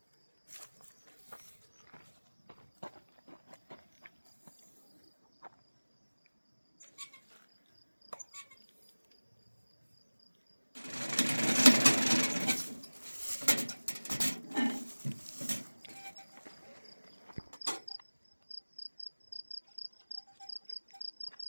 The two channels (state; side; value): inverted; both; correlation -1.00